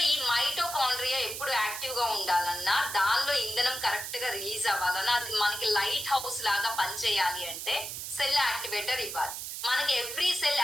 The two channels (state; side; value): noise; right; hiss, 7 dB below the sound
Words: ఈ మైటోకాండ్రియా ఎప్పుడు యాక్టివ్ గా ఉండాలన్నా, దానిలో ఇంధనం కరెక్ట్ గా రిలీజ్ అవ్వాలన్నా, అది మనకి లైట్ హౌస్ లాగా పనిచేయాలి అంటే సెల్ యాక్టివేటర్ ఇవ్వాలి. మనకి ఎవ్రీ సెల్